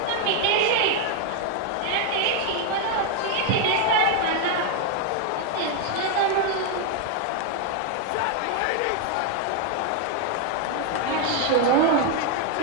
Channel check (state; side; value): different; both; correlation 0.01